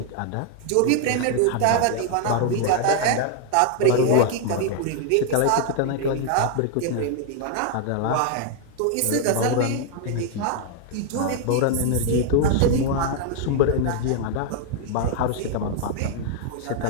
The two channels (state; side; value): different; both; correlation 0.00